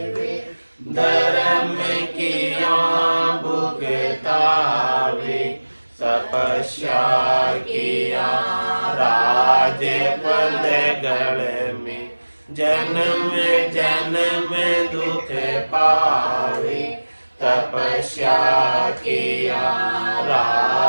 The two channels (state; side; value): inverted; both; correlation -1.00